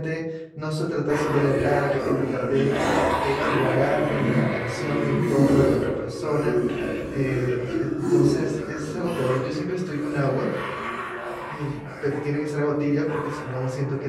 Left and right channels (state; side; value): identical; both; correlation 1.00